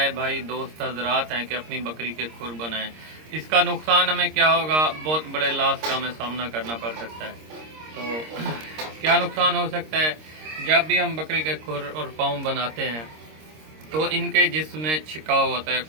भाई दोस्त हजरात हैं, कि अपनी बकरी के खुर बनाएं। इसका नुकसान हमें क्या होगा, बहुत बड़े लॉस का हमें सामना करना पड़ सकता है। तो क्या नुकसान हो सकता है, जब भी हम बकरी के खुर और पाँव बनाते हैं तो इनके जिस्म में छिकाव होता है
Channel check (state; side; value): late; left; 26 ms